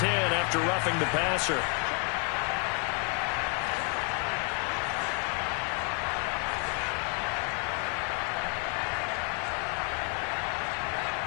after roughing the passer.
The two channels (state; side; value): quieter; right; 36.2 dB